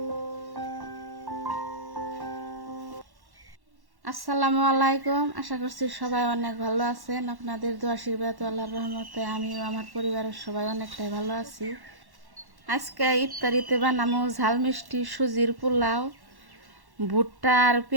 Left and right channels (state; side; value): late; left; 1.1 ms